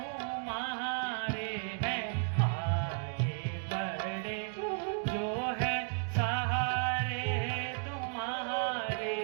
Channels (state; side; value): silent; left; 55 dB below the other